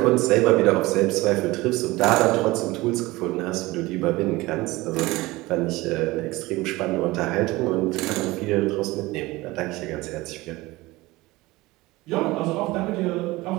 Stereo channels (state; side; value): quieter; left; 20.4 dB